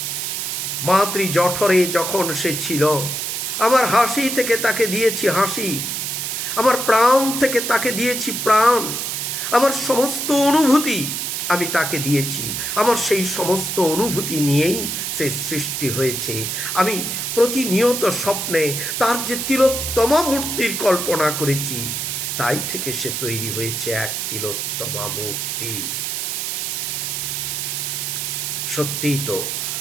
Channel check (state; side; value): noise; right; hiss, 2 dB below the sound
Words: মাতৃ জঠরে যখন সে ছিল, আমার হাসি থেকে তাকে দিয়েছি হাসি, আমার প্রাণ থেকে তাকে দিয়েছি প্রাণ, আমার সমস্ত অনুভূতি আমি তাকে দিয়েছি। আমার সেই সমস্ত অনুভূতি নিয়েই সে সৃষ্টি হয়েছে। আমি প্রতিনিয়ত স্বপ্নে তার যে তিলোত্তমা মূর্তির কল্পনা করেছি, তাই থেকে সে তৈরি হয়েছে এক তিলোত্তমা মূর্তি। সত্যিই তো